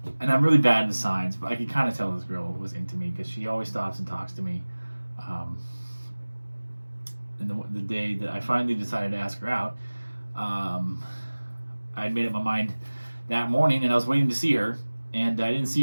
and I'm really bad at the signs, but I could kind of tell this girl was into me because she always stops and talks to me. And the day that I finally decided to ask her out, I had made up my mind that morning, and I was waiting to see her, and I didn't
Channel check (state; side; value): inverted; both; correlation -1.00